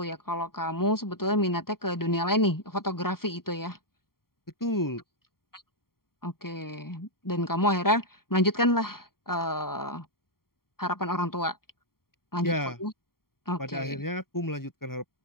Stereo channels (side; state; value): right; late; 0.93 ms